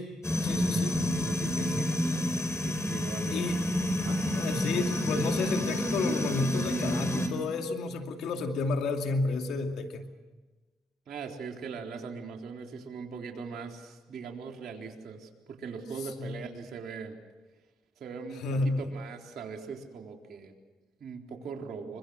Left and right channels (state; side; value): normal; both; correlation 0.77